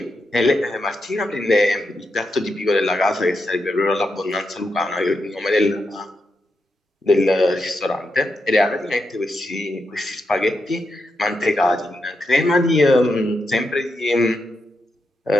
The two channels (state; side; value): normal; both; correlation 0.85